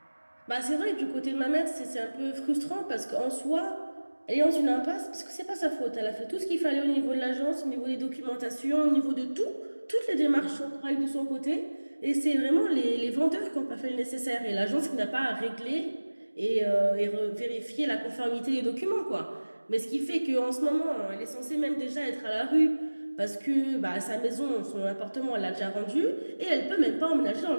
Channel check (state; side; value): inverted; both; correlation -1.00